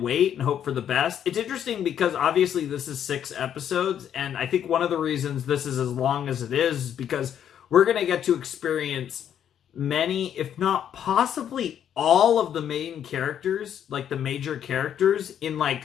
wait and hope for the best. It's interesting because obviously this is 6 episodes, and I think one of the reasons this is as long as it is because we're going to get to experience many, if not possibly all of the main characters, like the major characters, in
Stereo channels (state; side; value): quieter; right; 9.5 dB